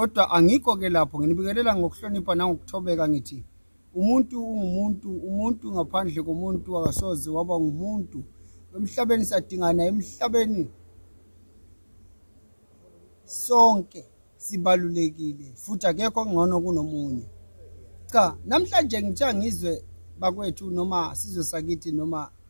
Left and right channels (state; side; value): inverted; both; correlation -1.00